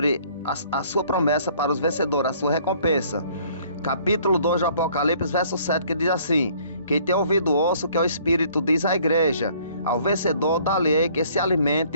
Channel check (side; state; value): both; inverted; correlation -0.58